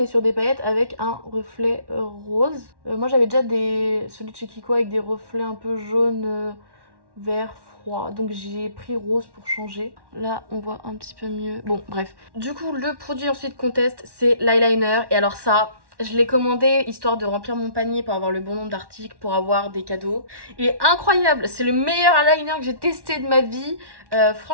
sur des paillettes avec un reflet rose. Moi j'avais déjà celui de chez Kiko avec des reflets un peu jaune, vert, froid. Donc j'ai pris rose pour changer. Là on voit un petit peu mieux. Bon bref. Du coup le produit ensuite qu'on teste c'est l'eyeliner. Et alors ça... je l'ai commandé histoire de remplir mon panier pour avoir le bon nombre d'articles, pour avoir des cadeaux. Il est incroyable, c'est le meilleur eyeliner que j'ai testé de ma vie.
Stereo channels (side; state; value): left; late; 1.1 ms